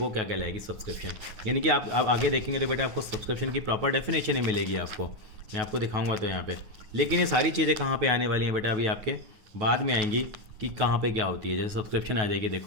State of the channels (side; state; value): left; late; 9.3 ms